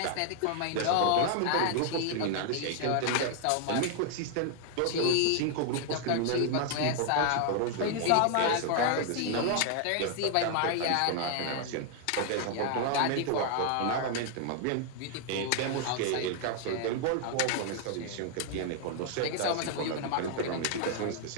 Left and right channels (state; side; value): different; both; correlation 0.00